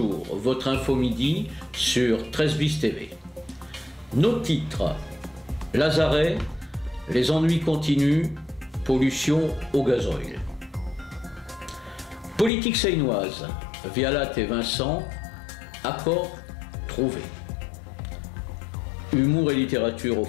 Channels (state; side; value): drops out; right; at 12.5 s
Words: Votre info midi sur 13 bis TV. Nos titres: Lazaret, les ennuis continuent, pollution au gazoil. Politique seinoise, Vialat et Vincent, accord trouvé. Humour et littérature au